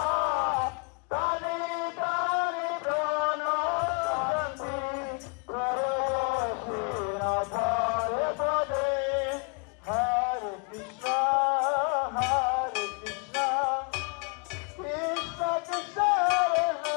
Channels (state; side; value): quieter; right; 35.5 dB